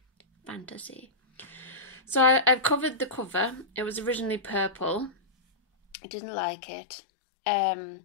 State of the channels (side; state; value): right; drops out; at 6.0 s